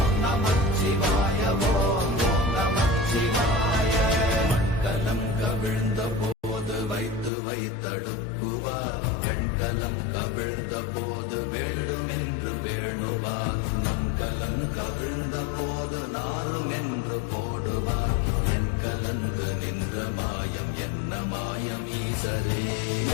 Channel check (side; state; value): right; drops out; at 7.3 s